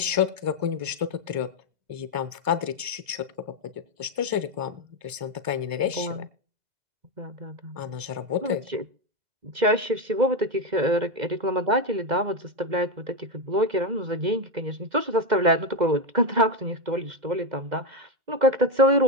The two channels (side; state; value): left; late; 2.0 ms